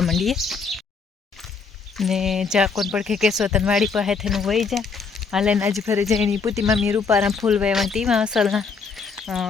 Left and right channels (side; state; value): right; quieter; 5.1 dB